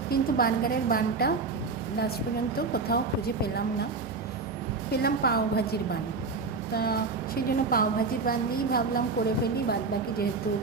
কিন্তু বার্গারের বানটা লাস্ট পর্যন্ত কোথাও খুঁজে পেলাম না। পেলাম পাওভাজির বান। তা সেই জন্য পাওভাজির বান দিয়েই ভাবলাম করে ফেলি, বাদবাকি যেহেতু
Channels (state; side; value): quieter; left; 4.2 dB